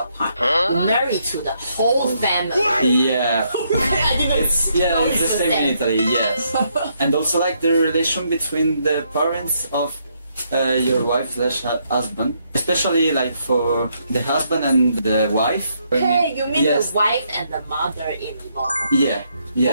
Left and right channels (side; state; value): both; inverted; correlation -0.75